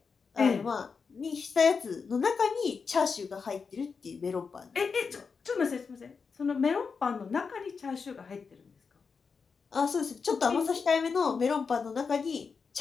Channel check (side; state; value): right; quieter; 5.4 dB